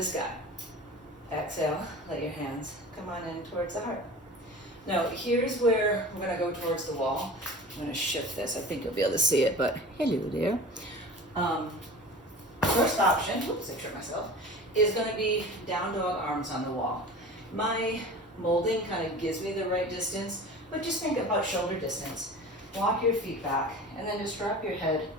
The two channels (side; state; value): both; normal; correlation 0.38